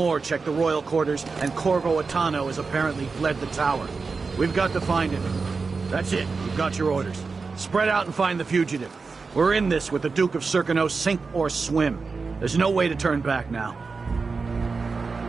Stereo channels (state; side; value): quieter; left; 4.5 dB